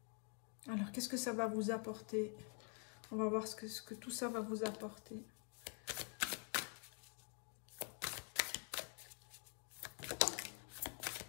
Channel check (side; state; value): right; quieter; 39.3 dB